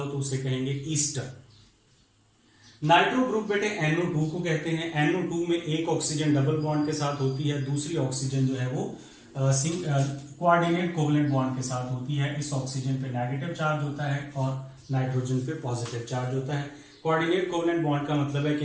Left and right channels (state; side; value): identical; both; correlation 1.00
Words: तो उसे कहेंगे ईस्टर। नाइट्रो ग्रुप बेटे NO2 को कहते हैं। NO2 में एक ऑक्सीजन डबल बॉन्ड के साथ होती है, दूसरी ऑक्सीजन जो है वो कोऑर्डिनेट कोवलेंट बॉन्ड के साथ होती है। इस ऑक्सीजन पे नेगेटिव चार्ज होता है और नाइट्रोजन पे पॉजिटिव चार्ज होता है। कोऑर्डिनेट कोवलेंट बॉन्ड का मतलब है